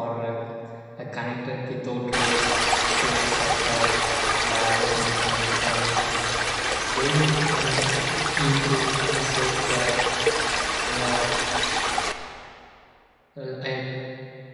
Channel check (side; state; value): both; identical; correlation 1.00